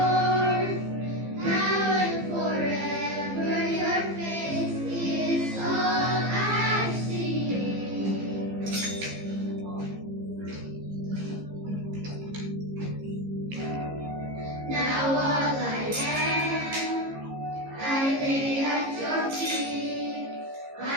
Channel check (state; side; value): late; left; 15 ms